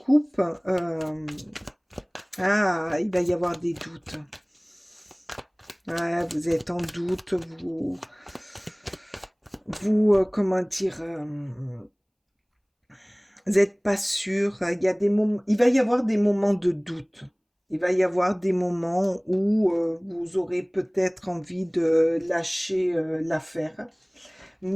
il va y avoir des doutes. Ouais, vous êtes en doute, comment dire, vous n'êtes pas sûr. Il y a des moments, il va y avoir des moments de doute. Il va y avoir des moments où vous aurez peut-être envie de lâcher l'affaire,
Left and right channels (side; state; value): both; identical; correlation 1.00